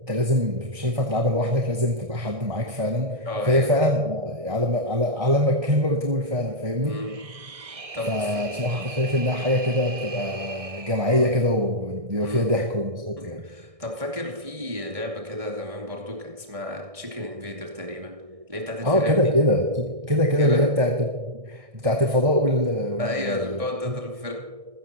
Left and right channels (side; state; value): left; late; 1.6 ms